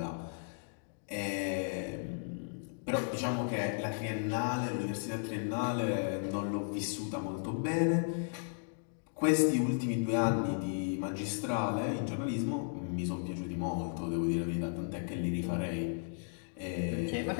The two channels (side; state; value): right; silent; digital silence